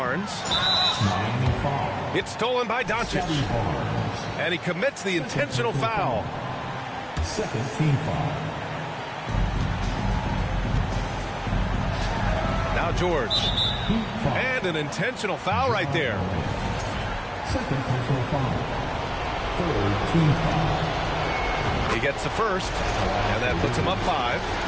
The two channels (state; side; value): identical; both; correlation 1.00